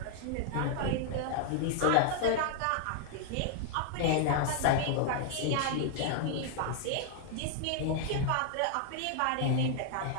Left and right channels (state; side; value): different; both; correlation 0.00